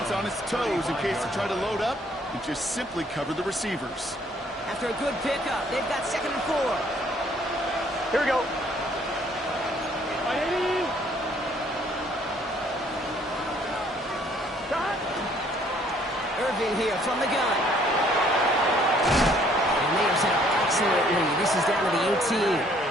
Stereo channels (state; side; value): normal; both; correlation 0.62